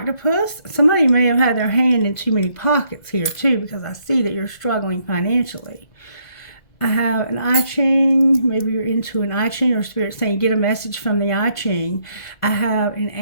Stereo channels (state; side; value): late; right; 2.0 ms